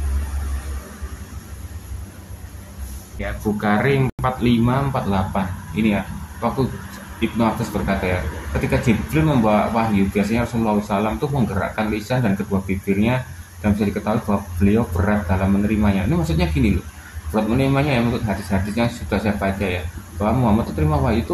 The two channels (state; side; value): identical; both; correlation 1.00